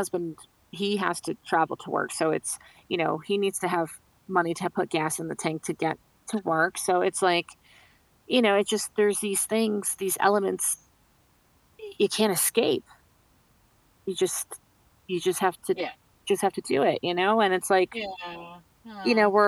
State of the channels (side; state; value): both; identical; correlation 1.00